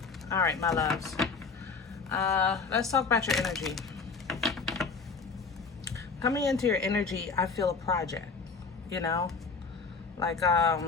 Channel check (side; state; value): right; quieter; 4.8 dB